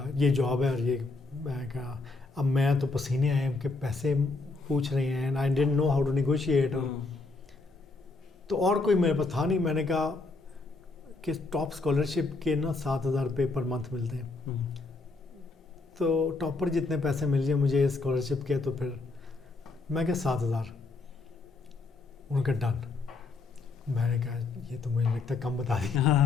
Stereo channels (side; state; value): right; quieter; 3.7 dB